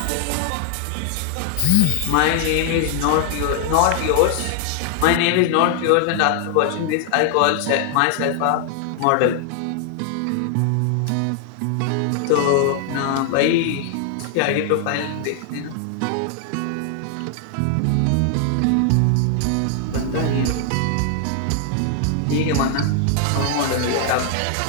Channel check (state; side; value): different; both; correlation 0.00